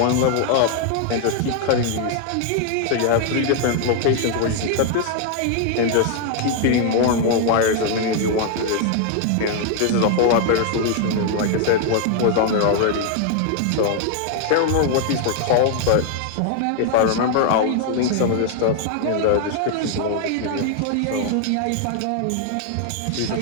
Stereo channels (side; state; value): both; different; correlation 0.00